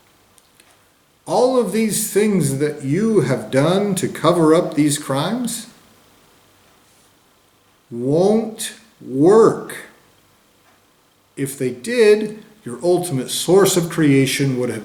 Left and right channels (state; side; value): identical; both; correlation 1.00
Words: All of these things that you have done to cover up these crimes won't work. If they did, your ultimate source of creation would